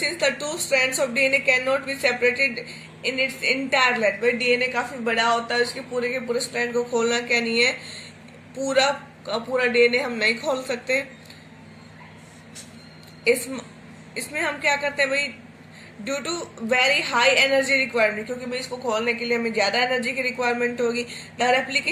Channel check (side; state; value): both; identical; correlation 1.00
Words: the two strands of DNA can not be separated in its entire length. भाई डीएनए काफी बड़ा होता है, उसके पूरे के पूरे स्ट्रैंड को खोलना क्या नहीं है, पूरा डीएनए हम नहीं खोल सकते। इसमें हम क्या करते हैं भाई, due to very high energy requirement, क्योंकि भाई इसको खोलने के लिए हमें ज्यादा एनर्जी की रिक्वायरमेंट होगी। The